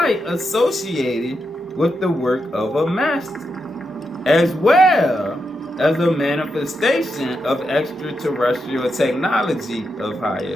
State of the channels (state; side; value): normal; both; correlation 0.85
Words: associated with the work of a master, as well as a manifestation of extraterrestrial technology of